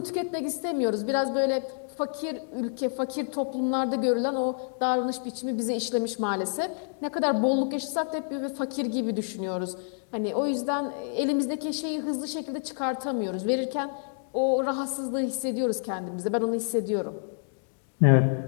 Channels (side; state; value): right; silent; digital silence